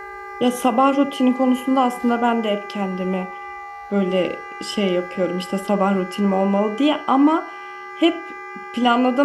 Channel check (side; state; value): both; identical; correlation 1.00